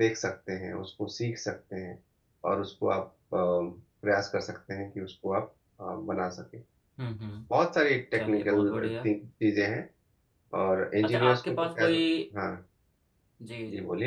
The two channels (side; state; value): both; identical; correlation 1.00